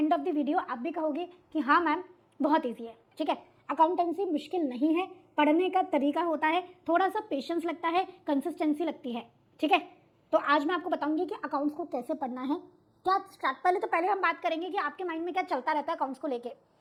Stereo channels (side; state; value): both; identical; correlation 1.00